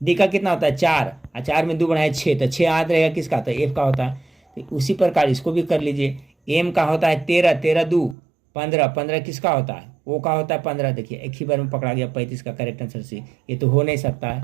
डी का कितना होता है 4, और 4 में 2 बढ़ाए 6, तो 6 याद रहेगा किसका होता है एफ का होता है। तो उसी प्रकार इसको भी कर लीजिए। एम का होता है 13, 13 2 15, 15 किसका होता है ओ का होता है 15, देखिए एक ही बार में पकड़ा गया 35 का करेक्ट आंसर सी, ये तो हो नहीं सकता है।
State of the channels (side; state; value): left; drops out; at 8.2 s